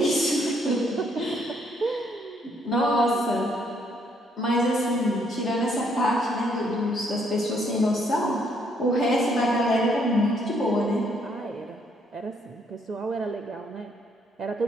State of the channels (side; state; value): both; normal; correlation 0.69